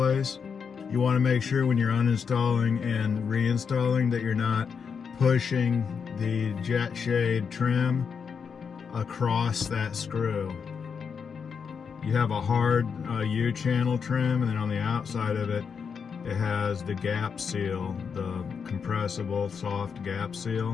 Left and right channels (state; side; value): quieter; right; 6.3 dB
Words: You want to make sure when you're uninstalling and reinstalling that you're not pushing the jet shade trim across that screw. You have a hard U-channel trim, and then on the outside of it, it has the gap seal, the compressible soft gap